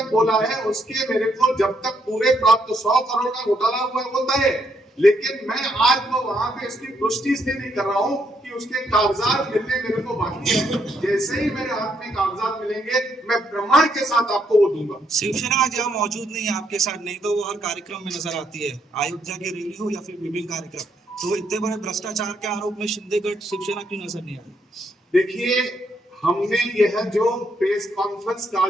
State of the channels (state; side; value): normal; both; correlation 0.74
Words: बोला है उसके मेरे को जब तक पूरे प्राप्त 100 करोड़ का घोटाला हुआ होता है, लेकिन मैं आज वो वहां पे इसकी पुष्टि इसलिए नहीं कर रहा हूं कि उसके कागजात मिलने मेरे को बाकी है। जैसे ही मेरे हाथ में कागजात मिलेंगे मैं प्रमाण के साथ आपको वो दूंगा। शिवसेना आज यहाँ मौजूद नहीं है आपके साथ, नहीं तो वो हर कार्यक्रम में नजर आती है, अयोध्या की रैली हो या फिर विभिन्न कार्यक्रम। तो इतने बड़े भ्रष्टाचार के आरोप में शिंदेगढ़ शिवसेना क्यों नजर नहीं आ रही? देखिए, हमने यह जो प्रेस कॉन्फ्रेंस